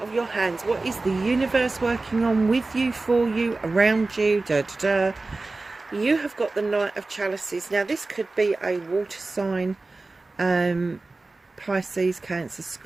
of your hands? What is the universe working on with you, for you, around you? Da, da, da. You have got the Knight of Chalices. Now this could be a water sign, Pisces, Cancer,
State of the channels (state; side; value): quieter; left; 3.4 dB